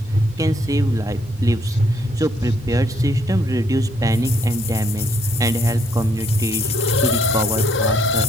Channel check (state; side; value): normal; both; correlation 0.69